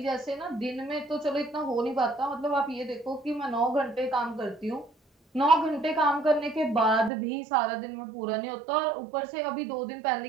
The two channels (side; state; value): left; drops out; at 7.1 s